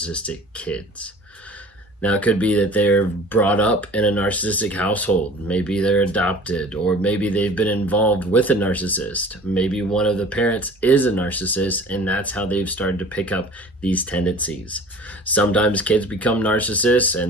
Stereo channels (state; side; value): normal; both; correlation 0.44